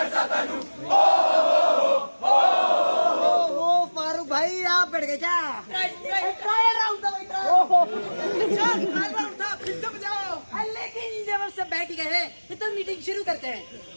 फारूक भाई आप बैठ गए क्या? ट्रायल राउंड था भाई, ट्रायल राउंड था, फिर से बजाओ। लेकिन जब सब बैठ गए तो मीटिंग शुरू करते हैं।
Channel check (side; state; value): both; inverted; correlation -1.00